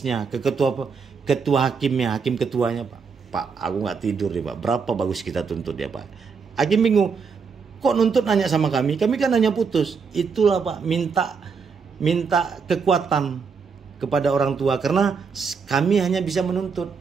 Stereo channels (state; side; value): quieter; left; 5.6 dB